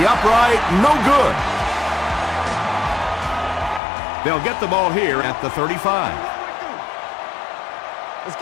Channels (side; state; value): right; drops out; at 3.8 s